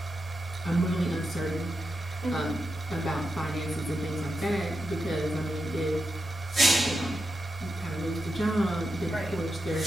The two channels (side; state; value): both; normal; correlation 0.87